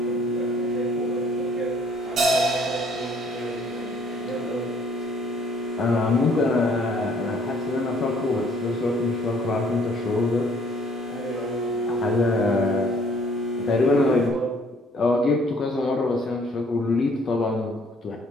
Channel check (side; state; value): both; normal; correlation 0.60